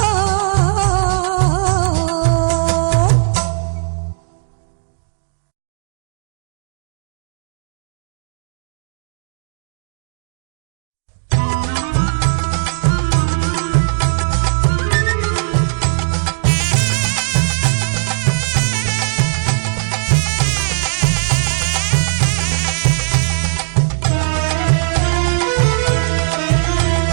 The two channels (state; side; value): silent; left; digital silence